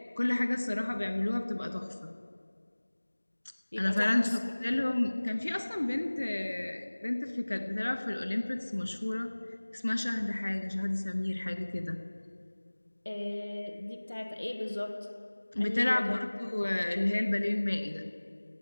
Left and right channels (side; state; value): both; inverted; correlation -1.00